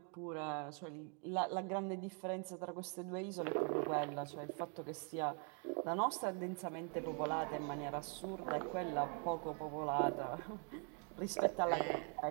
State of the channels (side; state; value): left; quieter; 39.3 dB